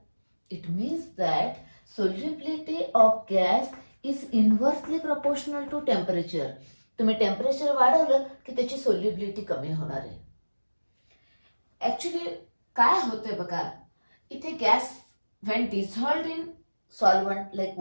It means that solubility of gas is inversely proportional to temperature. तुम्ही टेम्परेचर वाढवलं की त्याची सोल्युबिलिटी कमी होणार आहे. ऍक्च्युली काय होतंय बघा, इथे gas when dissolved in solvent like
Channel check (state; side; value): inverted; both; correlation -1.00